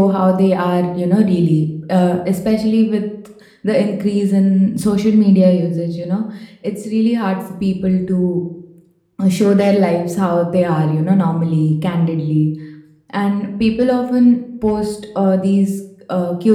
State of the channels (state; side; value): identical; both; correlation 1.00